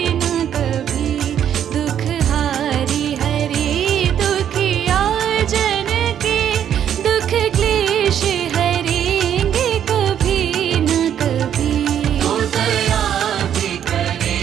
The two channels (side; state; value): left; quieter; 9.6 dB